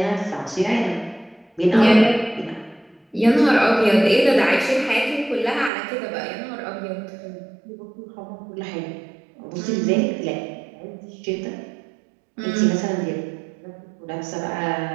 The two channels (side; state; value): left; drops out; at 5.7 s